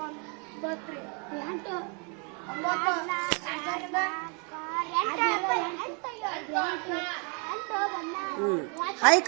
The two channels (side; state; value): left; quieter; 36.2 dB